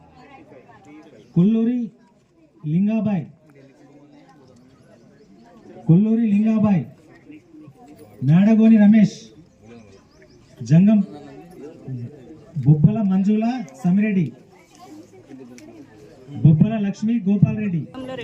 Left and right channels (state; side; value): identical; both; correlation 1.00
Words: Kolluri Lingabai. Kolluri Lingabai. Medagoni Ramesh. Jangam Bobbala Manjula Samireddy. బొబ్బల లక్ష్మి గోపాల్ రెడ్డి.